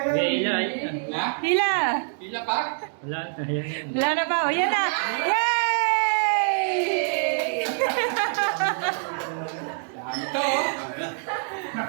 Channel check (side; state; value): left; silent; 61 dB below the other